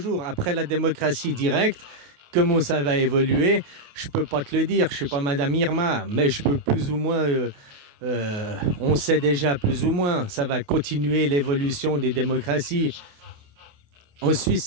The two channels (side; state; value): left; late; 28 ms